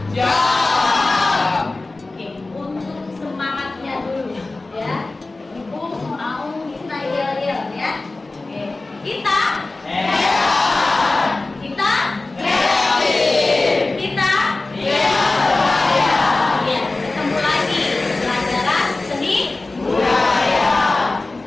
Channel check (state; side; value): quieter; right; 3.2 dB